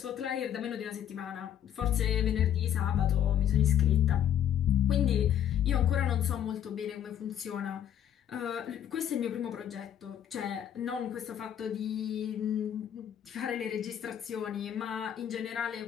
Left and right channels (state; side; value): quieter; right; 10.1 dB